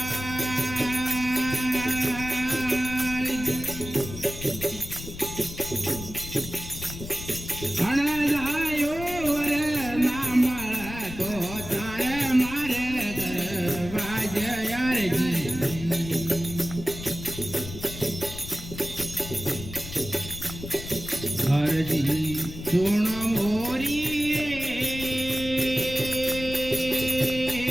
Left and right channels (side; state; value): left; noise; rumble, 11 dB below the sound